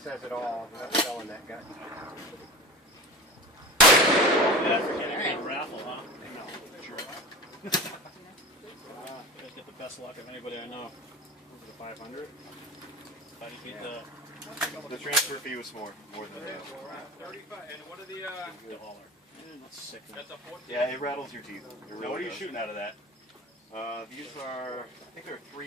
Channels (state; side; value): normal; both; correlation 0.33